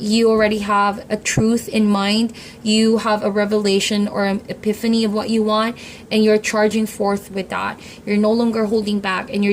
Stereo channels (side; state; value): both; identical; correlation 1.00